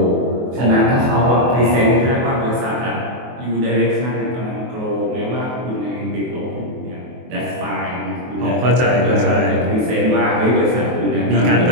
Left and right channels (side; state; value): left; late; 23 ms